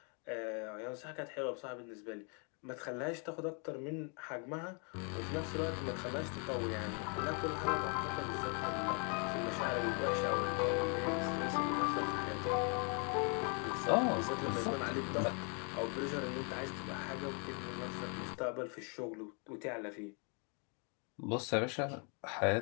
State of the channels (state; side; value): quieter; right; 37.7 dB